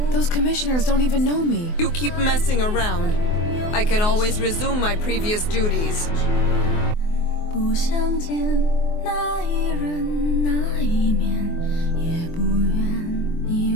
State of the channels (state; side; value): late; right; 24 ms